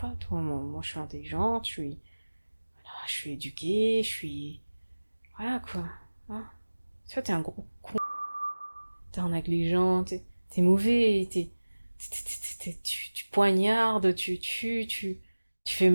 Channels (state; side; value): inverted; both; correlation -1.00